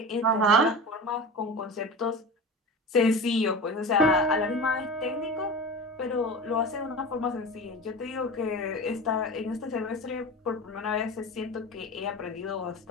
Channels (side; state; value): both; normal; correlation 0.30